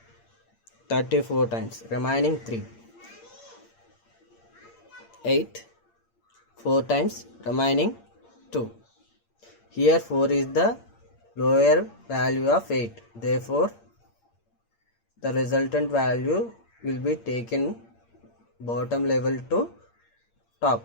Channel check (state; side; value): late; right; 8.7 ms